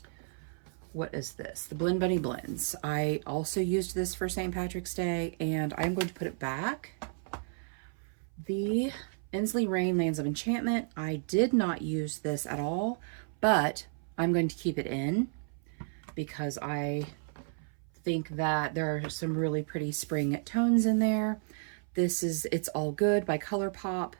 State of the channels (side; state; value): left; silent; 56 dB below the other